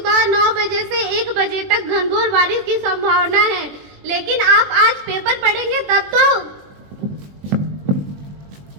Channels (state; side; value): late; left; 21 ms